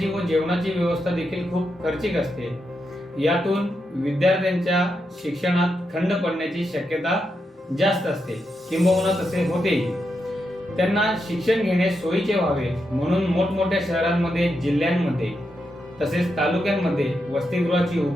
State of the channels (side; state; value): both; normal; correlation 0.85